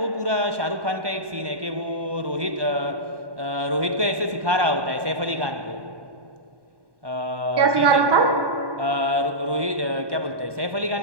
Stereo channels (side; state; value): left; late; 1.2 ms